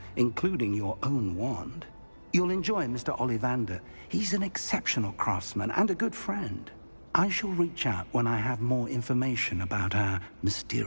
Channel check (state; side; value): inverted; both; correlation -1.00